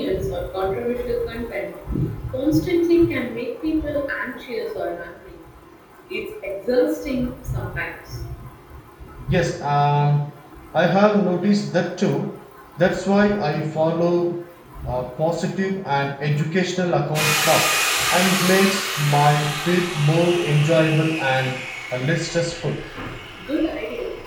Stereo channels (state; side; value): identical; both; correlation 1.00